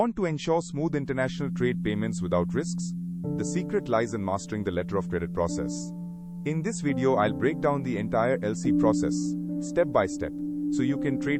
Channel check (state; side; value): identical; both; correlation 1.00